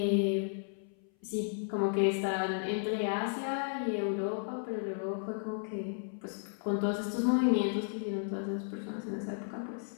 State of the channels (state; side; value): silent; right; 55 dB below the other